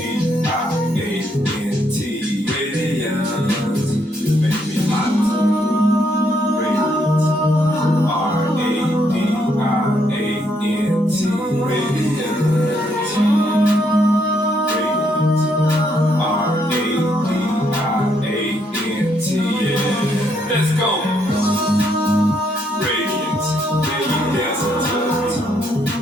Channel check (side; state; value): both; normal; correlation 0.73